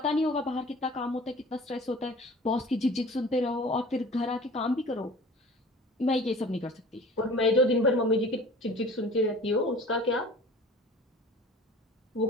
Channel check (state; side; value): normal; both; correlation 0.44